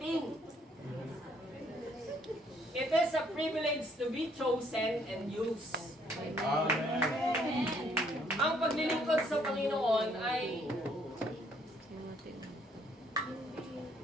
It is a privilege to be chosen and used. Amen. Ang paglilingkod sa Panginoon ay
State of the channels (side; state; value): both; normal; correlation 0.66